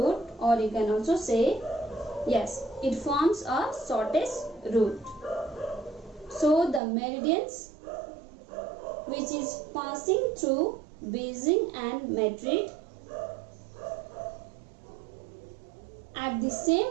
or you can also say, yes, it forms a shortest route. So the meridians which is passing through Beijing and Madrid at the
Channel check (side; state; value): left; drops out; at 6.8 s